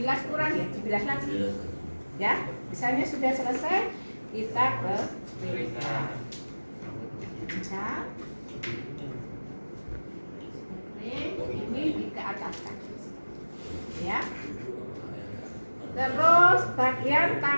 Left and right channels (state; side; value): inverted; both; correlation -1.00